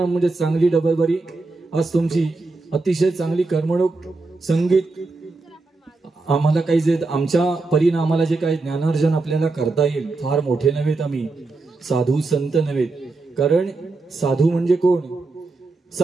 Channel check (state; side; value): quieter; left; 3.5 dB